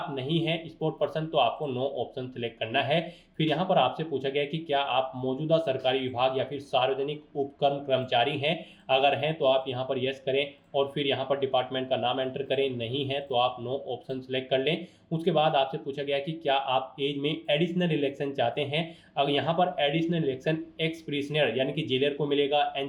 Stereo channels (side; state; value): both; identical; correlation 1.00